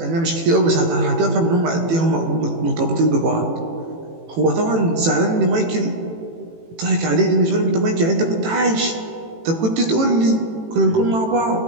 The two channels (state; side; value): late; left; 18 ms